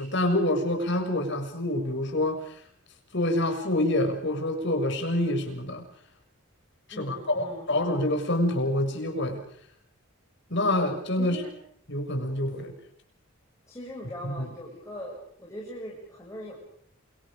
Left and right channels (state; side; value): normal; both; correlation 0.26